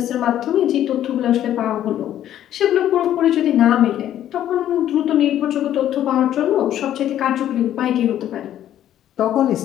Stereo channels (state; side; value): quieter; right; 11.5 dB